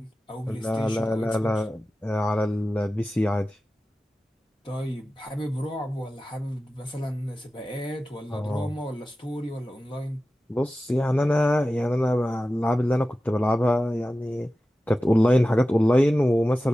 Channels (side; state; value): both; normal; correlation 0.95